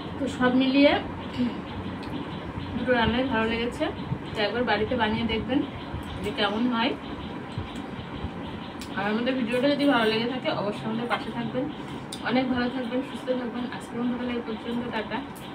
তো সব মিলিয়ে দুটো রান্নাই ভালো লেগেছে। তো একবার বাড়িতে বানিয়ে দেখবেন যে কেমন হয়। আর আমাদের ভিডিওটা যদি ভালো লেগে থাকে অবশ্যই আমাদের পাশে থাকবেন। অনেক ভালো থাকবেন, সুস্থ থাকবেন। আজকের মতো এই পর্যন্ত, টাটা।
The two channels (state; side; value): identical; both; correlation 1.00